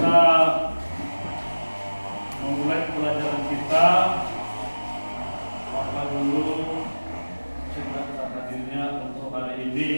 memulai pelajaran kita, maka dulu cerita hadirnya untuk hari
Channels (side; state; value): both; inverted; correlation -1.00